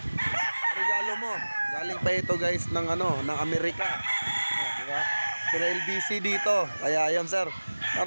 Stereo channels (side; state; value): both; inverted; correlation -1.00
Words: regalo mo. Galing pa ito, guys, ng ng Amerika. Diba? Pero LBC dito. Kaya ayan, sir.